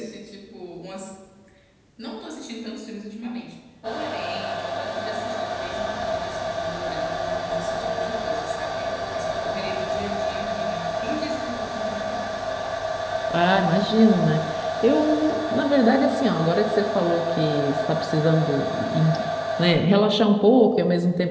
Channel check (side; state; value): both; identical; correlation 1.00